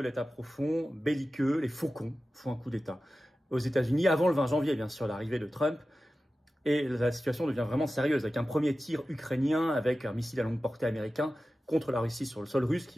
profond, belliqueux. Les faucons font un coup d'État aux États-Unis avant le 20 janvier, bien sûr, l'arrivée de Trump. Et la situation devient vraiment sérieuse avec un premier tir ukrainien avec un missile à longue portée américain contre la Russie sur le sol russe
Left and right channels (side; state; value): both; normal; correlation 0.94